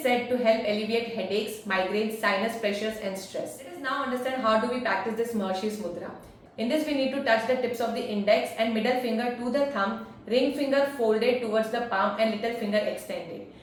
said to help alleviate headaches, migraines, sinus pressures and stress. Let us now understand how do we practice this Mahasirs Mudra. In this, we need to touch the tips of the index and middle finger to the thumb, ring finger folded towards the palm and little finger extended.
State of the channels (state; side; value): identical; both; correlation 1.00